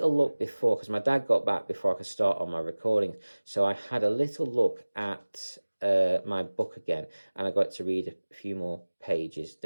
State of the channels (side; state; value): both; inverted; correlation -1.00